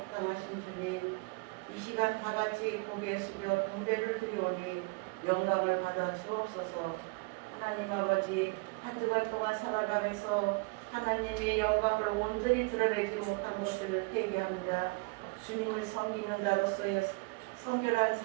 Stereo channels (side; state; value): left; quieter; 28.8 dB